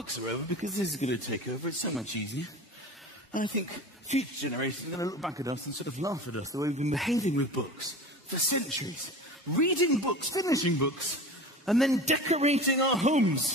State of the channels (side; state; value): both; normal; correlation 0.35